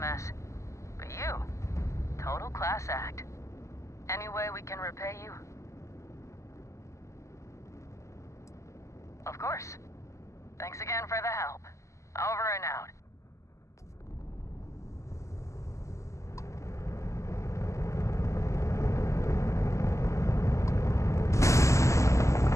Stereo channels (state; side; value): late; right; 0.14 ms